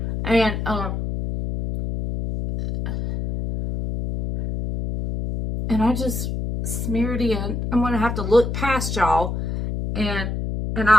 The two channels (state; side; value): noise; left; hum, 4 dB below the sound